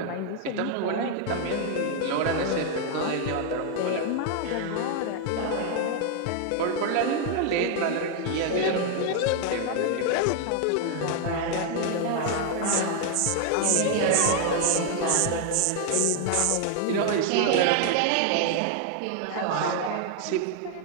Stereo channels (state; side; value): different; both; correlation 0.00